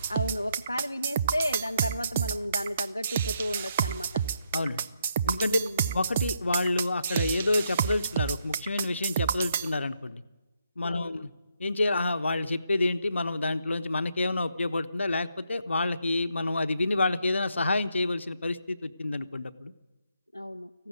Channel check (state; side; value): inverted; both; correlation -0.77